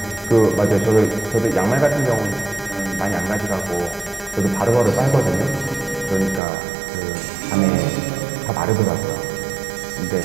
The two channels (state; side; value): drops out; left; at 6.4 s